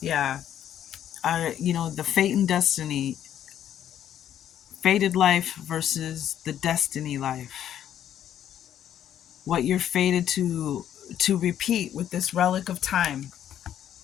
Yeah. You know, the fate and destiny. Fated life versus the destiny life. What you're fated to repeat with this relic of time.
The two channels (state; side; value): quieter; right; 10.5 dB